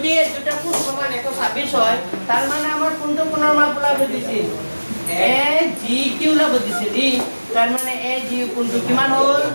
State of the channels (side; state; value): both; inverted; correlation -1.00